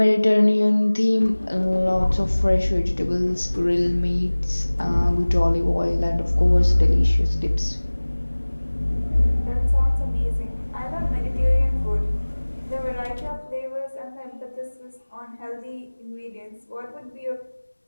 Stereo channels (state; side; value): inverted; both; correlation -1.00